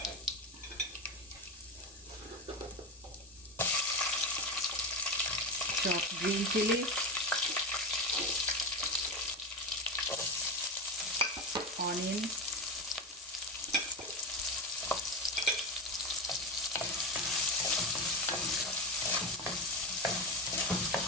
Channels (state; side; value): normal; both; correlation 0.19